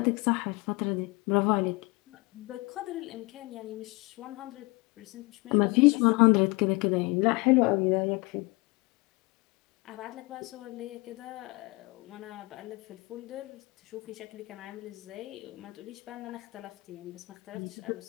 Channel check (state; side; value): quieter; right; 25.2 dB